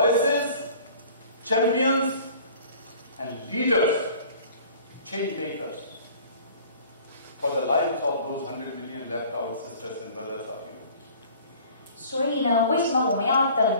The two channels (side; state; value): both; inverted; correlation -0.49